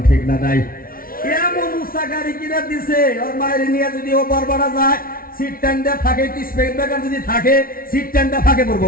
ঠিক না? নাই। এমন উষা গাড়ি কিনা দিছে, ওর মায়ের নিয়ে যদি ও বরবাড়া যায়, সিট টাইমটা ফাঁকে, স্পেড ব্রেকার যদি থাকে, সিট টাইমটা ফাঁকে পড়বো।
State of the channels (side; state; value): right; late; 0.43 ms